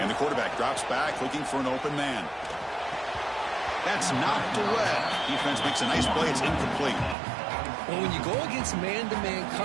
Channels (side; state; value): left; drops out; at 7.2 s